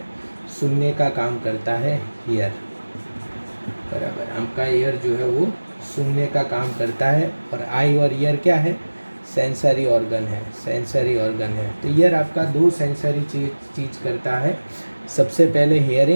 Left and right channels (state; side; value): inverted; both; correlation -1.00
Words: सुनने का काम करता है ईयर, बराबर। आपका ईयर जो है वो सुनने का काम करता है। और आई और ईयर क्या है? सेंसरी ऑर्गन है, सेंसरी ऑर्गन है। तो ईयर आपका दो सेंसरी चीज़ करता है। सबसे पहले